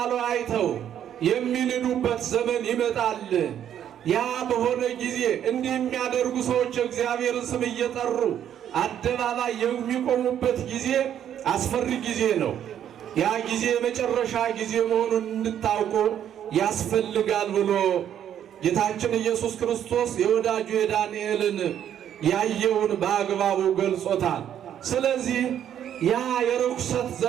አይተው የሚንዱበት ዘመን ይመጣል። ያ በሆነ ጊዜ እንዲህ የሚያደርጉ ሰዎች እግዚአብሔርን ስም እየጠሩ አደባባይ የሚቆሙበት ጊዜ አስፈሪ ጊዜ ነው። ያ ጊዜ የመጨረሻ ጊዜ መሆኑን እንድታውቁ ያስፈልጋል ብሎ ጌታችን ኢየሱስ ክርስቶስ የወዳጁ የዳንኤልን ያየውን በአግባቡ ገልጾታል። ስለዚህ ያ የርኩሰት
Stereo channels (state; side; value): quieter; left; 10.0 dB